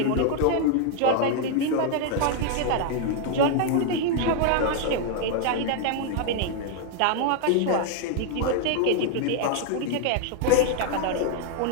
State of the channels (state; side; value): different; both; correlation 0.00